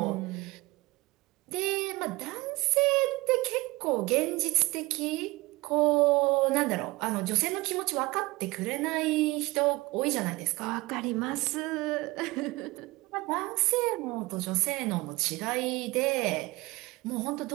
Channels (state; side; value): quieter; left; 21.9 dB